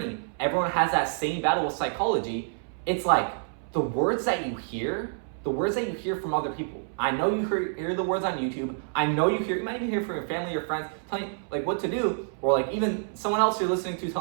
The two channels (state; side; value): silent; left; 60 dB below the other